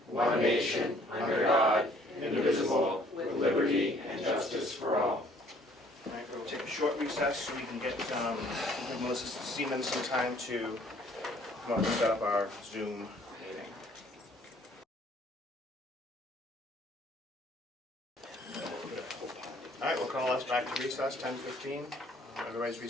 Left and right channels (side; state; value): both; normal; correlation 0.59